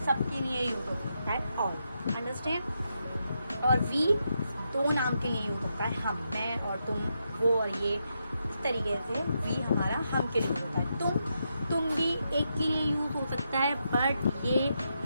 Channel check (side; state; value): both; inverted; correlation -0.83